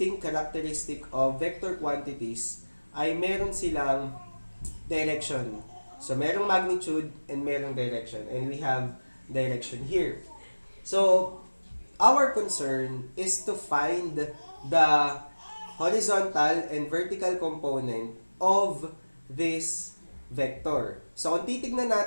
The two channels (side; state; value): both; inverted; correlation -1.00